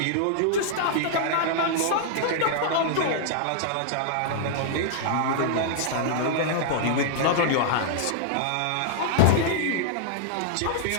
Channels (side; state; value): both; different; correlation -0.01